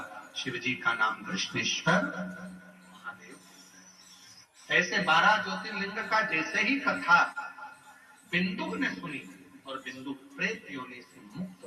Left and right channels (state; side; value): identical; both; correlation 1.00